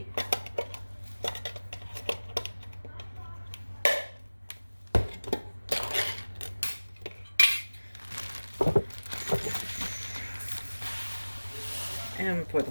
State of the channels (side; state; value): both; inverted; correlation -1.00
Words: And I'm going to pour the